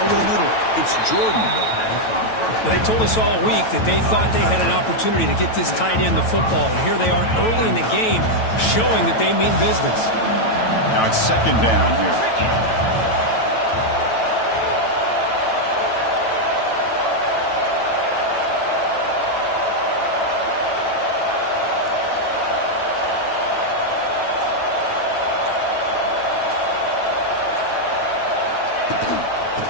over the middle. It's Jordan. They told us all week that they thought they had an opportunity to get this tight end the football, and here they are early in the game showing that they mean business. Now it's 2nd down here.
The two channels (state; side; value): late; right; 9.1 ms